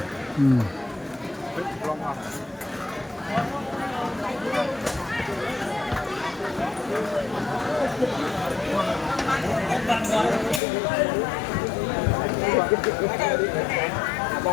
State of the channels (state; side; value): drops out; right; at 10.6 s